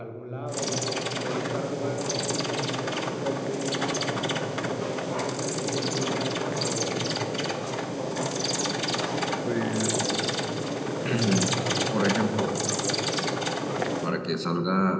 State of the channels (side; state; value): both; identical; correlation 1.00